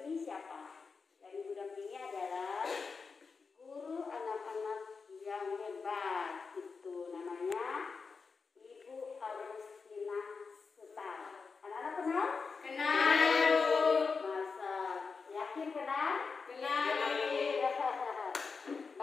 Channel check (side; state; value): right; quieter; 4.9 dB